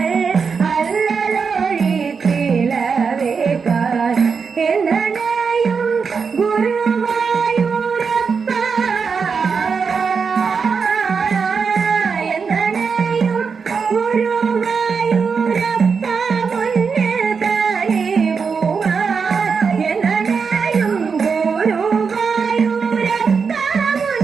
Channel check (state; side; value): quieter; left; 5.6 dB